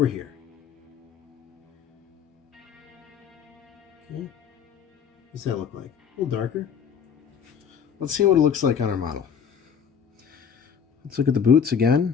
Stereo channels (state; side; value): quieter; right; 7.3 dB